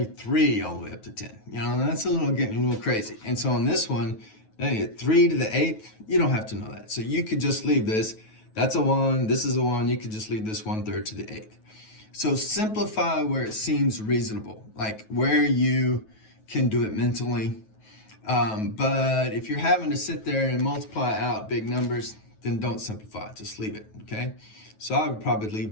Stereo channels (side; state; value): right; late; 9.3 ms